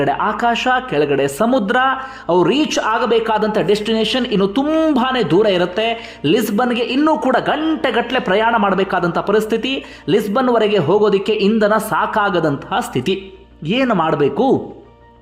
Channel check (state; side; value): identical; both; correlation 1.00